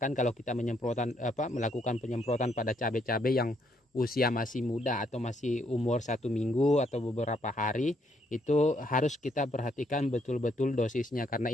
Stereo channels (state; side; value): normal; both; correlation 0.72